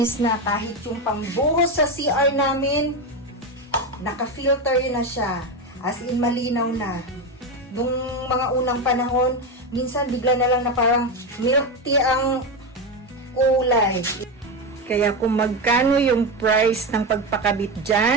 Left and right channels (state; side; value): normal; both; correlation 0.14